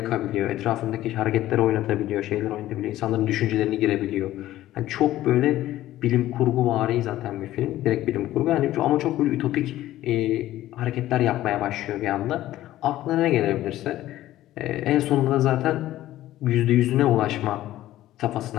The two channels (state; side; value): quieter; right; 14.5 dB